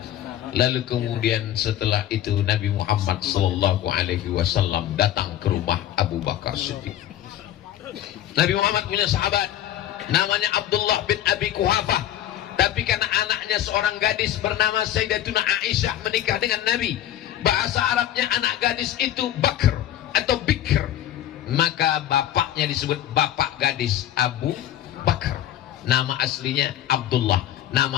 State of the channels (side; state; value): right; quieter; 12.0 dB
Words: Lalu kemudian setelah itu Nabi Muhammad sallallahu alaihi wasallam datang ke rumah Abu Bakar Siddiq. Nabi Muhammad punya sahabat namanya Abdullah bin Abi Quhafah, tapi karena anaknya seorang gadis bernama Sayyidatuna Aisyah menikah dengan Nabi. Bahasa Arabnya anak gadis itu Bakr atau Bikr, maka bapaknya disebut bapak gadis Abu Bakar. Nama aslinya Abdullah,